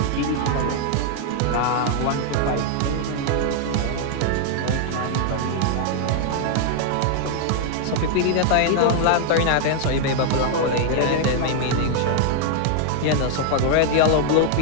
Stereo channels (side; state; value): both; different; correlation 0.00